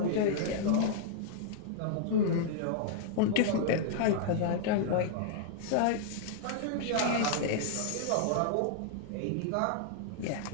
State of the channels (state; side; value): different; both; correlation -0.01